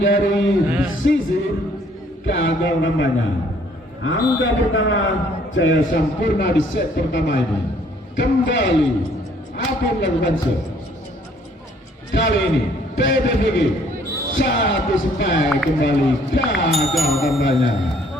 sisi gagal namanya. Angka pertama Jaya Sampurna di set pertama ini kembali Ape melakukan serve kali ini PBVG satu spike kembali gagal tambahnya.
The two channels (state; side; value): normal; both; correlation 0.62